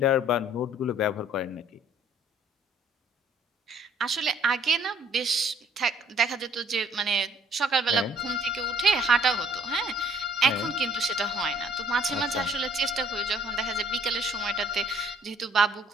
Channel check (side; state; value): both; normal; correlation 0.58